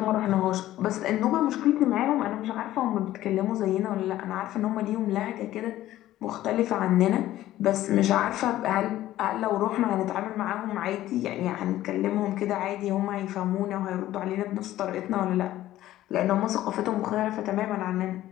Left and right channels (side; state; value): right; quieter; 14.3 dB